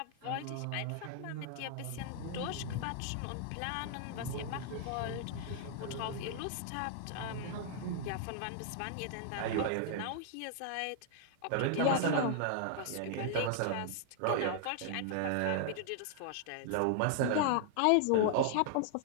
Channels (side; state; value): both; different; correlation -0.01